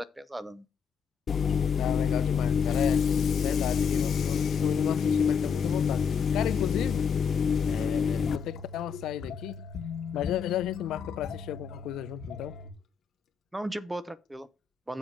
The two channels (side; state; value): right; quieter; 6.5 dB